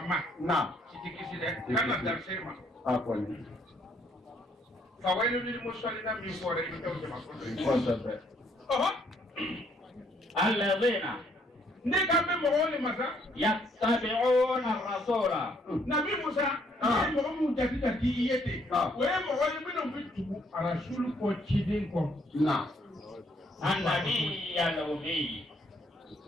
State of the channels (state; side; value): normal; both; correlation 0.67